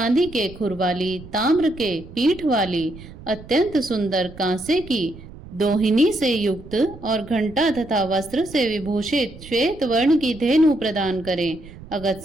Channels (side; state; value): right; noise; rumble, 17 dB below the sound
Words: के खुर वाली, ताम्र के पीठ वाली, अत्यंत सुंदर कांसे की दोहिनी से युक्त और घंटा तथा वस्त्र से विभूषित श्वेत वर्ण की धेनु प्रदान करें।